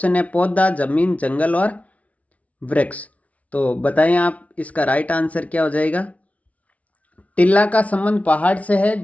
है पौधा, जमीन, जंगल और वृक्ष। तो बताएं आप इसका राइट आंसर क्या हो जाएगा। टिल्ला का संबंध पहाड़ से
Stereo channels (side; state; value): right; late; 0.067 ms